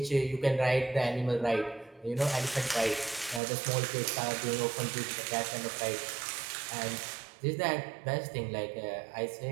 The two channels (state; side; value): drops out; left; at 3.4 s